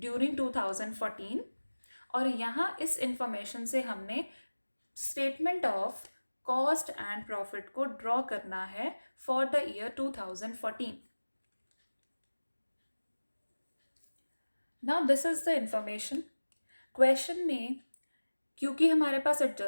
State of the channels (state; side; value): inverted; both; correlation -1.00